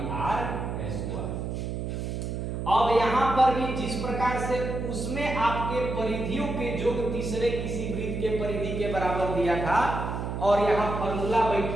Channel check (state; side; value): noise; right; hum, 4 dB below the sound